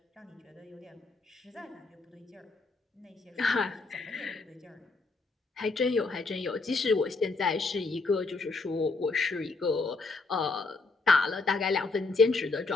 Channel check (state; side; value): quieter; right; 3.7 dB